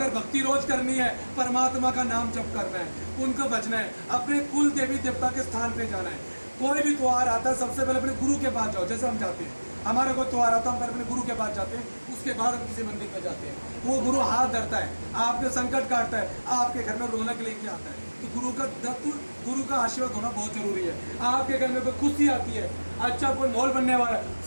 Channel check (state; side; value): inverted; both; correlation -1.00